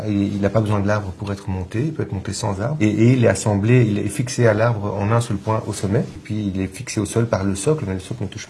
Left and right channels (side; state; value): both; identical; correlation 1.00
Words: Il n'a pas besoin de l'arbre pour être monté, il peut être monté sans arbre. Et il est assemblé, il est fixé à l'arbre en un seul point au sommet. Et puis il est fixé au sol par le socle, mais le socle ne touche